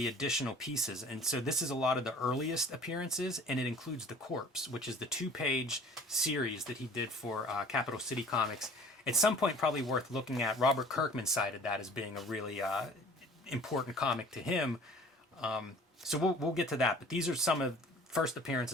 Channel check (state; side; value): normal; both; correlation 0.48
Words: additional pieces. And so this is a lot of the earliest appearances, and it includes The Corpse, which is the 2-page series that he did for Capital City Comics. At some point, probably worth looking at. Robert Kirkman cited that as being a really important comic to him. So we'll get to that. But these are some of first